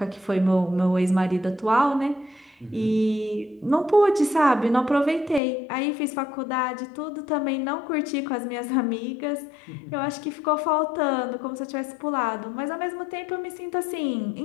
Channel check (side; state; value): right; drops out; at 5.4 s